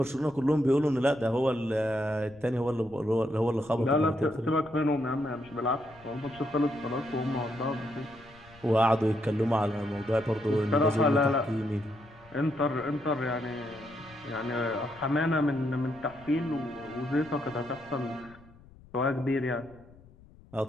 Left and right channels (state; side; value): noise; left; rumble, 24 dB below the sound